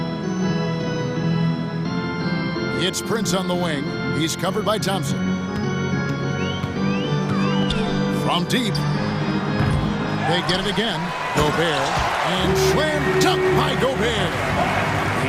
It's Prince on the wing. He's covered by Thompson. From deep. They get it again. Gobert. And slam dunk by Gobert.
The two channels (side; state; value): both; identical; correlation 1.00